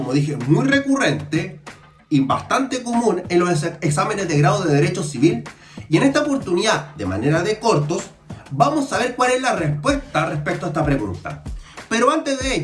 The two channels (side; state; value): both; identical; correlation 1.00